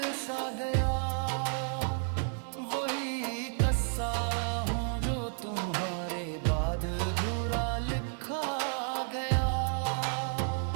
सा गया, वही कस्सा हूँ जो तुम्हारे बाद अधूरा लिखा गया।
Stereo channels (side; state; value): left; silent; 57 dB below the other